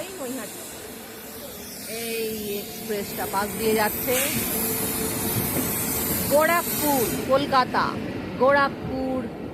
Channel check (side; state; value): both; identical; correlation 1.00